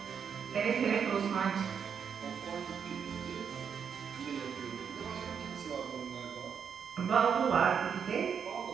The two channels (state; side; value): quieter; left; 7.1 dB